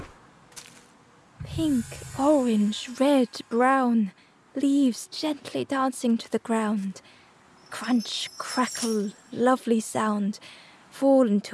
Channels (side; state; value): both; identical; correlation 1.00